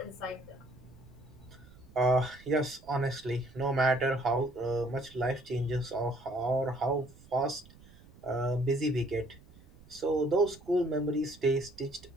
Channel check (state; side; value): noise; right; rumble, 23 dB below the sound